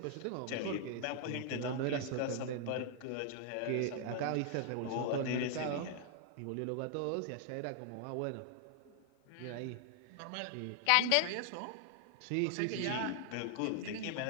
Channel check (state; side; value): different; both; correlation 0.00